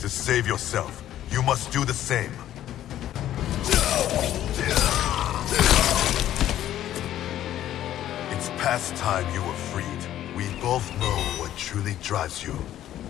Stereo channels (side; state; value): right; quieter; 12.3 dB